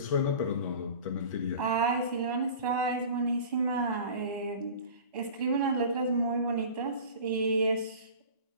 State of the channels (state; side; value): inverted; both; correlation -0.39